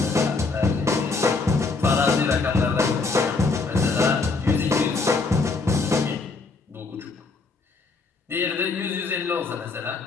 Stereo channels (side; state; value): right; quieter; 4.0 dB